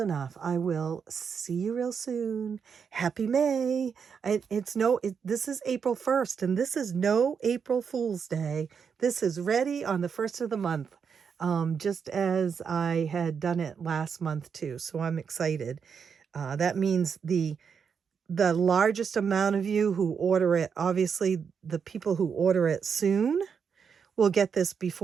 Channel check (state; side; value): quieter; left; 6.5 dB